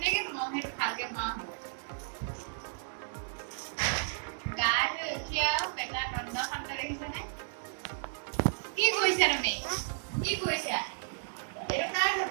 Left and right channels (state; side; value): silent; left; digital silence